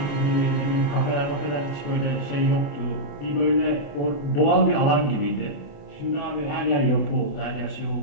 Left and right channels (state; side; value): late; right; 28 ms